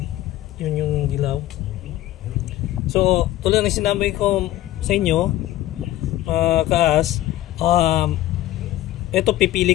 Yun yung dilaw. So, tulad ng sinabi ko sa inyo, kaas, ito pipili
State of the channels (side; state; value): right; quieter; 14.7 dB